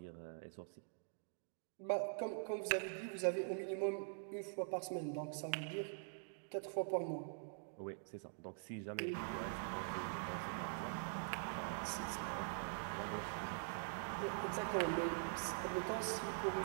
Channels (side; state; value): left; silent; digital silence